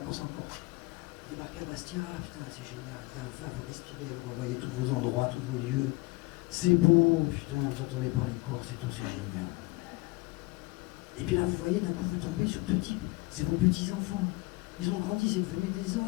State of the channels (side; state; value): right; quieter; 23.1 dB